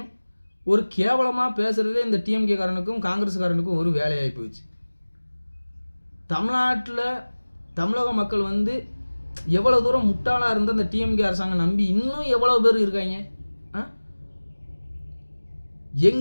ஒரு கேவலமாக பேசுகிறதே இந்த டிஎம்கே காரனுக்கும் காங்கிரஸ்காரனுக்கும் ஒரு வேலையாகி போயிடுச்சு. தமிழ்நாட்டில் தமிழக மக்கள் எவ்வளோ தூரம் முட்டாளாக இருந்தால் அந்த டிஎம்கே அரசாங்கம் நம்பி இன்னும் எவ்வளோ பேர் இருக்காங்க.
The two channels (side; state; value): both; inverted; correlation -1.00